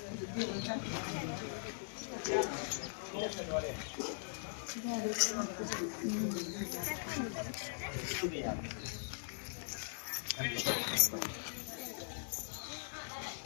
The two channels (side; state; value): right; silent; digital silence